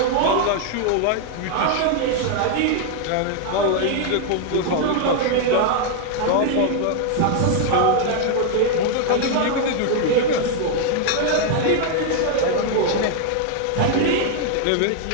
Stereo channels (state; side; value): different; both; correlation 0.00